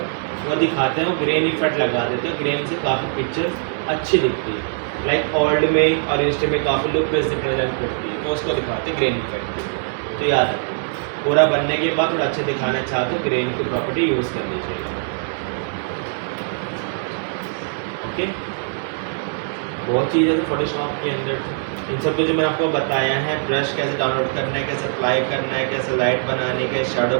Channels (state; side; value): silent; left; digital silence